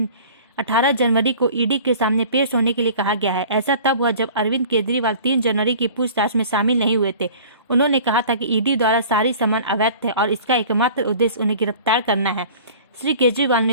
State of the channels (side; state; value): both; inverted; correlation -0.45